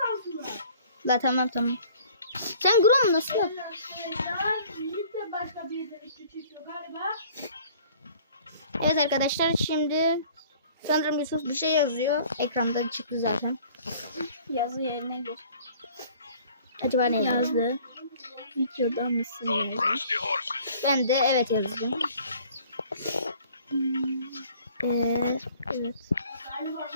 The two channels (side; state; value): both; inverted; correlation -0.53